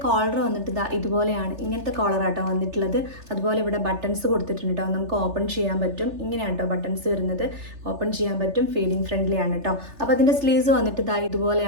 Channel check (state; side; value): late; left; 3.4 ms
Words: കോളർ വന്നിട്ട് ഇതുപോലെയാണ്, ഇങ്ങനത്തെ കോളറാട്ടോ വന്നിട്ടുള്ളത്. അതുപോലെ ഇവിടെ ബട്ടൺസ് കൊടുത്തിട്ടുണ്ട് കേട്ടോ, നമുക്ക് ഓപ്പൺ ചെയ്യാൻ പറ്റും. ഇങ്ങനെയാണ് കേട്ടോ ബട്ടൺസ് വരുന്നത്, ഓപ്പൺ ചെയ്യാൻ പറ്റും. ഫീഡിങ് ഫ്രണ്ട്ലി ആണ് കേട്ടോ. അപ്പോൾ അതിൻ്റെ സ്ലീവ്സ് വന്നിട്ട്